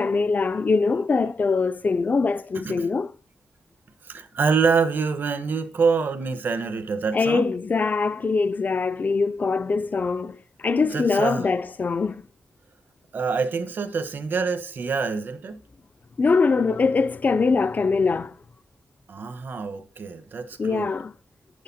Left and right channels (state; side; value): normal; both; correlation 0.83